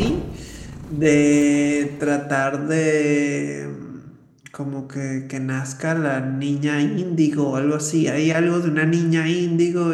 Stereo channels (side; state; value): both; identical; correlation 1.00